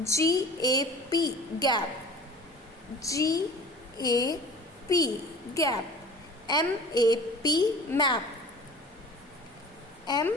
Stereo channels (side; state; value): both; normal; correlation 0.41